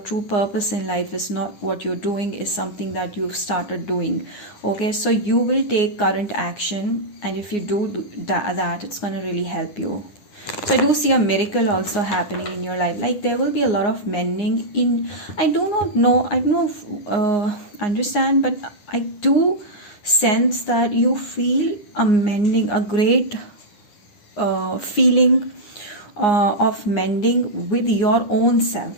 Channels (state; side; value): late; right; 9.6 ms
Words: purpose in life is not what you're doing, is something that you've started doing, okay? So you will take current action, and if you do that it's going to really help you. So I do see a miracle also happening in your life. Like there will be a lot of mending in, I do not know, I don't understand, but I do sense that you feel a mending, a great feeling of mending with your own self.